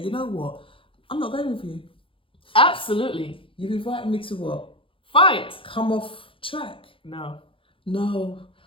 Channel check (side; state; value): right; late; 0.25 ms